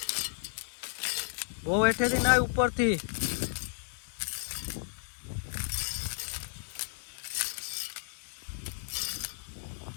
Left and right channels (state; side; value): silent; right; 56 dB below the other